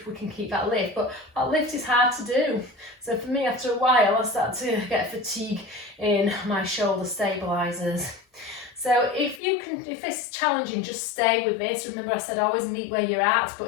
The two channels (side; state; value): right; drops out; at 9.4 s